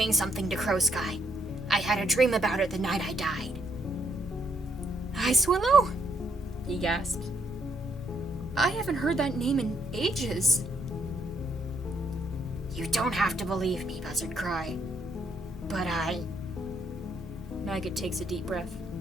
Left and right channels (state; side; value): normal; both; correlation 0.74